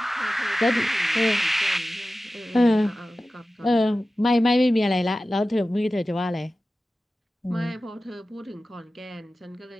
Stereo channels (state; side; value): normal; both; correlation 0.95